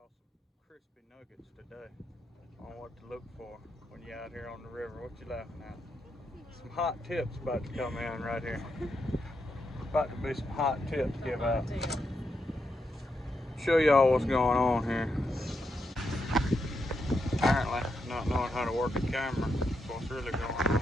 some crispy nuggets today on what to look for when you're out here on the river. What you laughing at? Some hot tips about to come in right here. About to be some hot tips give out. Show y'all what's going on here. Apparently, not knowing how to work a camera. That's what's really going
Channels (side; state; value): both; normal; correlation 0.83